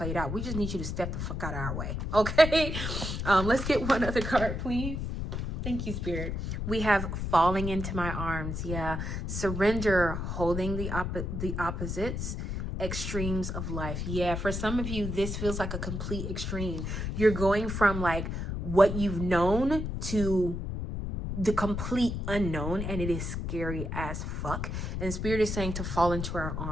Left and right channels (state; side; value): noise; left; rumble, 3 dB below the sound